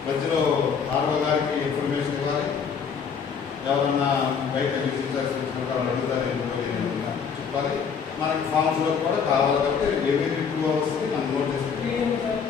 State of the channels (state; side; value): quieter; right; 6.5 dB